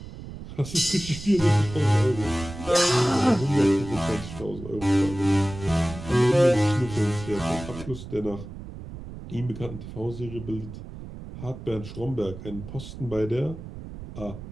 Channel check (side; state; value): right; noise; rumble, 12 dB below the sound